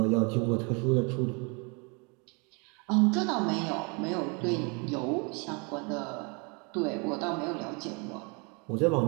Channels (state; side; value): quieter; left; 32.2 dB